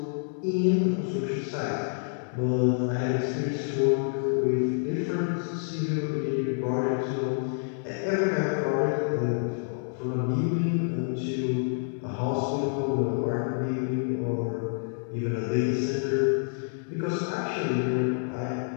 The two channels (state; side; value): silent; right; digital silence